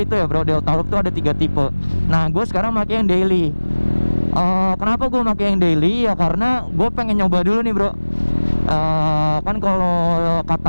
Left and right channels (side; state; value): both; inverted; correlation -1.00